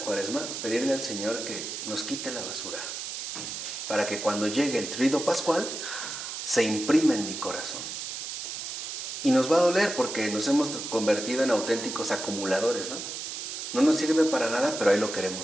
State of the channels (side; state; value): right; noise; hiss, 6 dB below the sound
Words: pedirle al Señor que nos quite la basura, para que cuando llegue el Tríodo Pascual se imprima en mi corazón. Y nos va a doler porque nos hemos convertido en auténticos acumuladores, ¿no? No nos sirve para nada, pero ahí lo